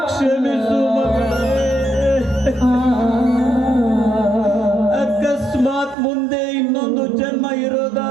ಕ್ಷಮಿಸು ಮಗಳೇ. ಅಕಸ್ಮಾತ್ ಮುಂದೆ ಇನ್ನೊಂದು ಜನ್ಮ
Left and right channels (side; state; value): left; drops out; at 6.0 s